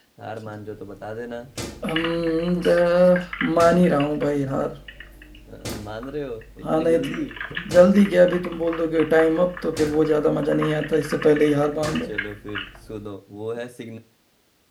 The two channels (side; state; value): both; identical; correlation 1.00